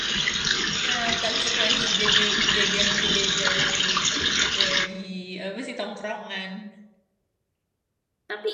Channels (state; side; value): identical; both; correlation 1.00